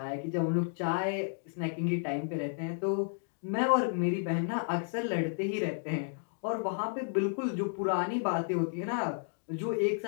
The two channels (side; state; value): right; silent; digital silence